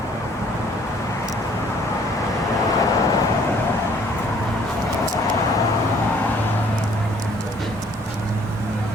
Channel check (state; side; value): normal; both; correlation 0.59